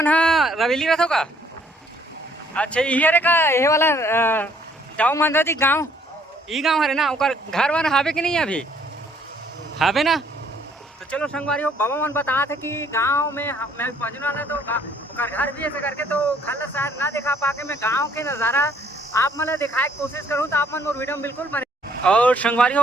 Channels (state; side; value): normal; both; correlation 0.64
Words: रवेली रहते हो का? अच्छा ये का ये वाला दाऊ मंदरा जी गांव ई गांव हरे ना ओकर घर वन हावे कि नहीं अभी हावे ना? तो चलो संगवारी हो बाबा मन बता थे कि गांव में मैं पहुंचने वाला तो ओकर घर भी ऐसे करके तो घर शायद ना दिखा पाके मैं गाँव के नज़ारा आप मतलब दिखाए की कोशिश करूँ। तो आप मन मोर वीडियो में बिल्कुल बने। और संगवारी